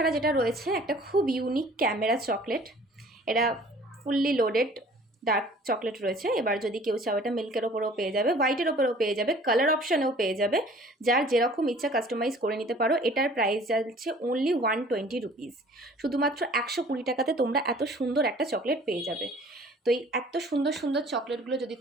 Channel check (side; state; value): both; normal; correlation 0.51